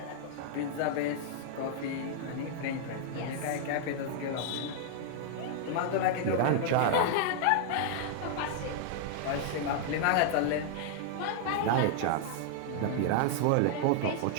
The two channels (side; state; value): both; different; correlation -0.01